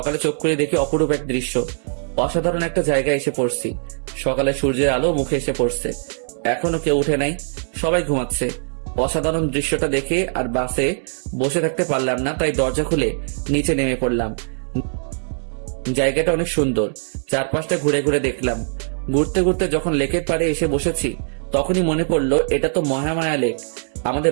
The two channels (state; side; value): silent; left; digital silence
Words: চোখ করে দেখি অপরূপ এক দৃশ্য। অসাধারণ একটা জায়গায় এসে পড়ছি। সকালে সূর্যের আলো মুখে এসে পড়ছে। এখনো কেউ উঠে নাই, সবাই ঘুমাচ্ছে। অসাধারণ দৃশ্যটা দেখে আর বাসে বসে থাকতে পারলাম না, তাই দরজা খুলে নিচে নেমে পড়লাম। জায়গাটা অনেক সুন্দর। চারপাশটা ঘুরে ঘুরে দেখলাম। ঘুরতে ঘুরতে যখন লেকের পাড়ে এসে বসেছি তখনই মনে পড়লো এটা তো মহামায়া লেক। আমাদের